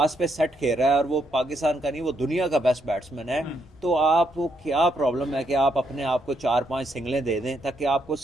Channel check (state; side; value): normal; both; correlation 0.76